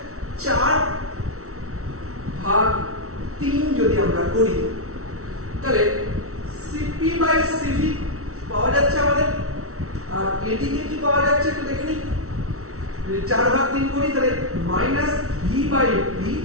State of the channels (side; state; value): left; late; 0.64 ms